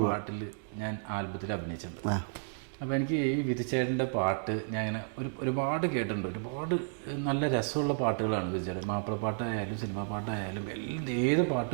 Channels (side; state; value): left; silent; digital silence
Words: പാട്ടിൽ ഞാൻ ആൽബത്തിൽ അഭിനയിച്ചിട്ടുണ്ട്. അപ്പോൾ എനിക്ക് ഈ വിധിച്ചേട്ടൻ്റെ പാട്ട് ഞാൻ ഇങ്ങനെ ഒരുപാട് കേട്ടിട്ടുണ്ട്. ഒരുപാട് നല്ല രസമുള്ള പാട്ടുകളാണ് വിധിച്ചേട്ടൻ. മാപ്പിളപ്പാട്ടായാലും സിനിമാ പാട്ടായാലും ഏത്